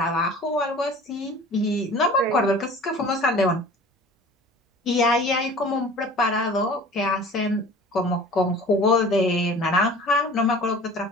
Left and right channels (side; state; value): both; normal; correlation 0.43